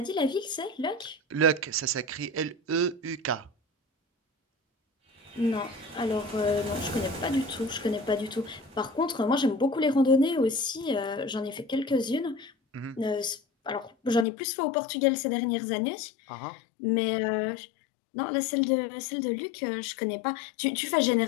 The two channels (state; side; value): drops out; right; at 14.2 s